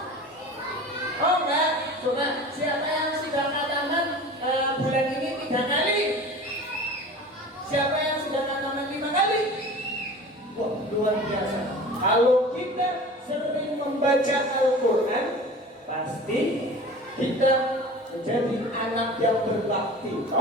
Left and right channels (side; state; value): both; normal; correlation 0.39